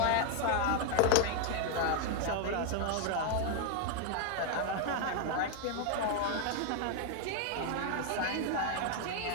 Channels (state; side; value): different; both; correlation 0.00